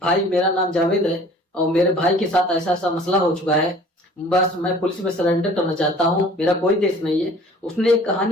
भाई मेरा नाम जावेद है और मेरे भाई के साथ ऐसा ऐसा मसला हो चुका है, बस मैं पुलिस में सरेंडर करना चाहता हूँ, मेरा कोई देश नहीं है। उसने एक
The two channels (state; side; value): normal; both; correlation 0.49